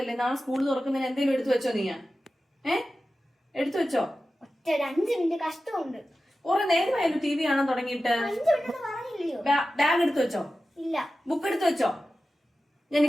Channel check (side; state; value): both; normal; correlation 0.94